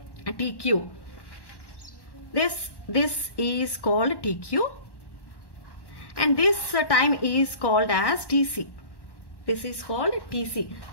TQ. This is called TQ, and this time is called as TC. This is called TC.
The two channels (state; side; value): late; right; 1.1 ms